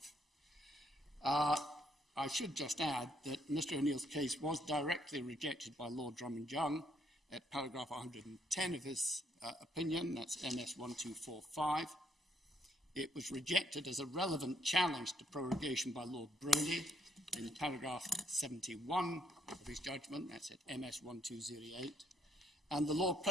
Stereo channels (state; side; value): normal; both; correlation 0.72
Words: I should just add that Mr. O'Neill's case was directly rejected by Lord Drummond-Young at paragraph 110 of his opinion, that's MS 1245. It was rejected as a relevant challenge to prorogation by Lord Brodie in paragraph 71 of his judgment, that's at MS 1208. And the Lord